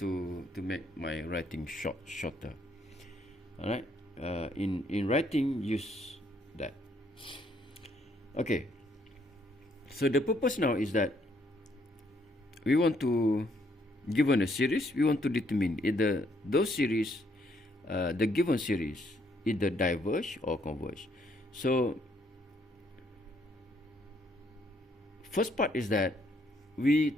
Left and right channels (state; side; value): normal; both; correlation 0.70